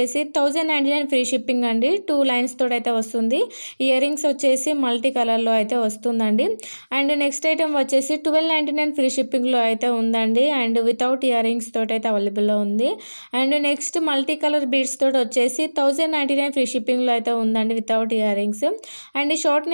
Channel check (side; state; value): both; inverted; correlation -1.00